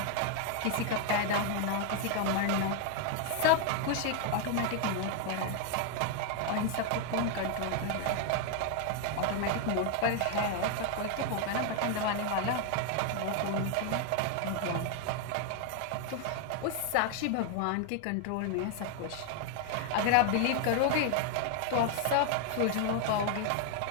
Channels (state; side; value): different; both; correlation 0.01